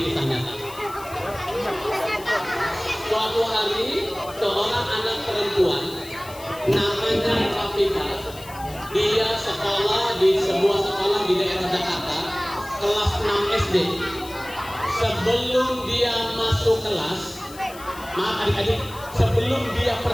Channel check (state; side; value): noise; left; hiss, 18 dB below the sound